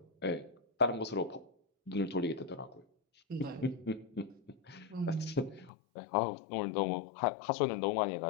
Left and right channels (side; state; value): right; drops out; at 5.7 s